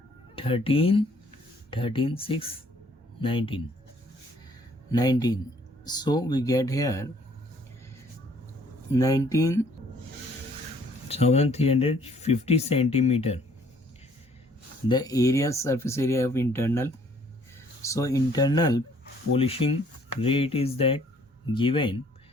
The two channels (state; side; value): normal; both; correlation 0.61